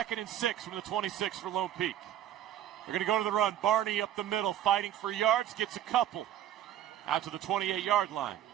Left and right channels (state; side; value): quieter; left; 11.6 dB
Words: and 6 from the 26 for Lone Peak. They're going to go to the run. Barney up the middle, fighting for yards, gets a couple out to the 28-yard line.